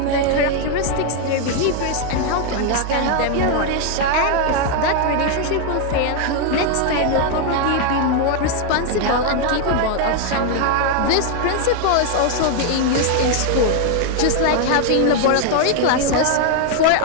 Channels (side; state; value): both; different; correlation 0.01